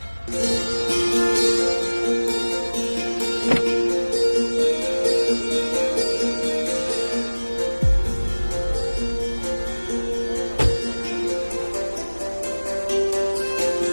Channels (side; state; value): both; inverted; correlation -1.00